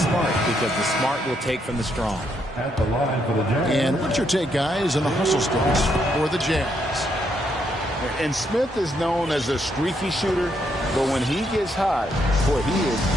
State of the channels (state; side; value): normal; both; correlation 0.76